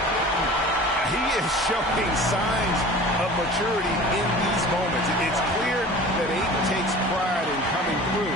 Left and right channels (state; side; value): normal; both; correlation 0.41